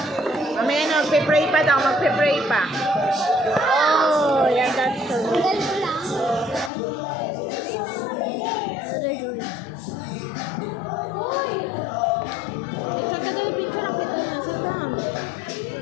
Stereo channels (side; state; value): right; drops out; at 6.7 s